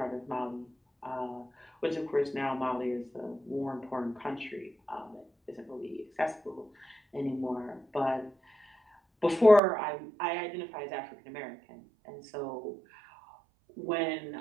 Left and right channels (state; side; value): drops out; left; at 9.6 s